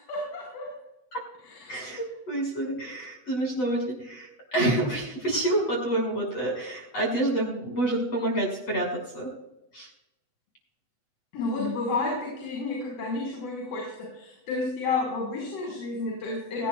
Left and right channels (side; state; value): right; late; 8.0 ms